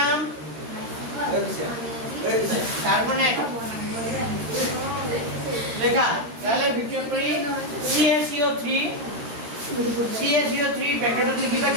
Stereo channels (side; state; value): left; late; 13 ms